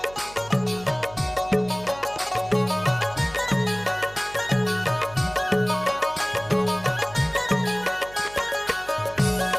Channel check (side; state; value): right; noise; hum, 20 dB below the sound